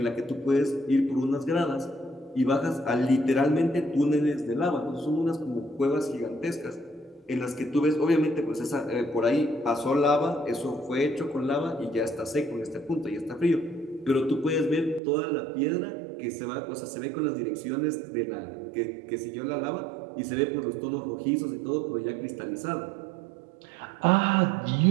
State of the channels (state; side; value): drops out; left; at 15.0 s